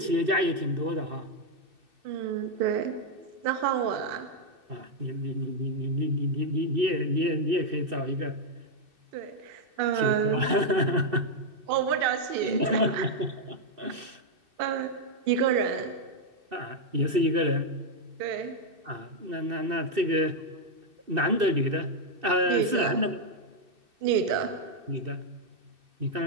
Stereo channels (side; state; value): left; late; 2.6 ms